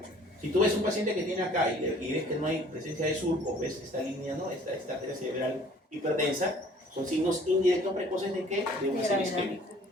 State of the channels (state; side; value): normal; both; correlation 0.53